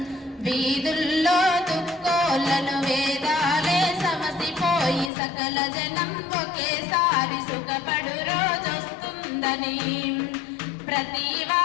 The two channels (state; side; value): drops out; right; at 5.1 s